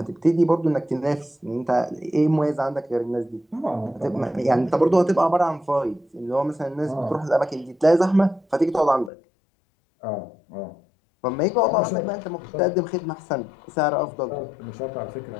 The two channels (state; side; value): drops out; right; at 9.1 s